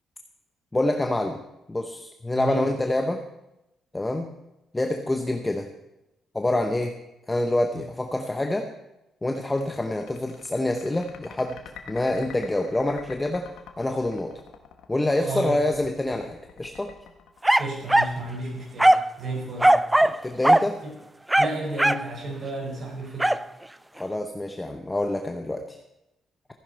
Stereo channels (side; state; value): both; normal; correlation 0.94